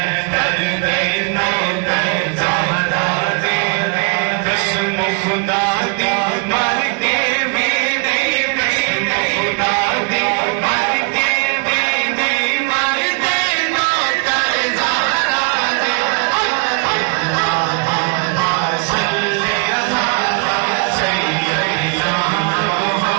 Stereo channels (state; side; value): quieter; left; 34.8 dB